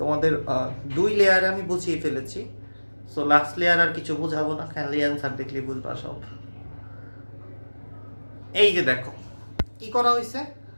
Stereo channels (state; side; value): inverted; both; correlation -1.00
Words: 2 লেয়ারে আমি বুঝিয়ে ফেলেছি। সো লাস্ট লেয়ার আর কিছু বুঝাবো না, খালি অ্যান্সার দেখলে বুঝবা সব। এই যে দেখো কি করা হয়েছে,